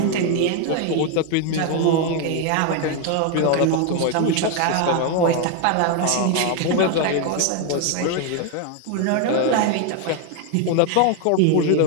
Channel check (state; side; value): different; both; correlation 0.01